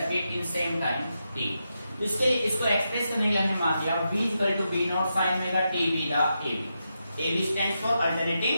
in same time t। इसके इसको एक्सप्रेस करने के लिए हमने मान दिया v equal to v naught sin omega t b the ab stands for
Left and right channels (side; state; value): both; inverted; correlation -0.86